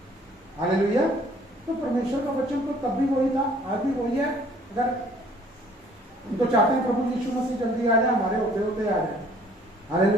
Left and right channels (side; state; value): both; normal; correlation 0.57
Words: हालेलुया। तो परमेश्वर का वचन तो तब भी वही था, आज भी वही है। अगर हम तो चाहते हैं प्रभु यीशु मसीह जल्दी आ जाए, हमारे होते होते आ जाए।